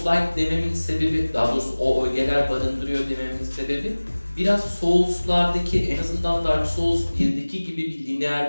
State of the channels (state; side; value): inverted; both; correlation -1.00